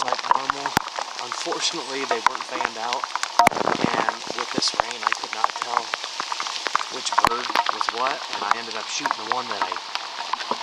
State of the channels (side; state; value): both; identical; correlation 1.00